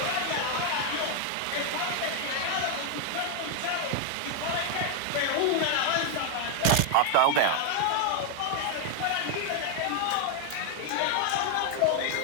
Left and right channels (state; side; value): different; both; correlation 0.00